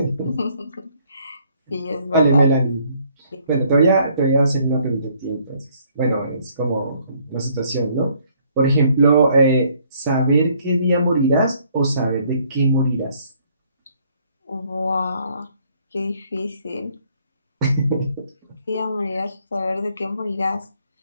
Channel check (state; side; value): inverted; both; correlation -0.65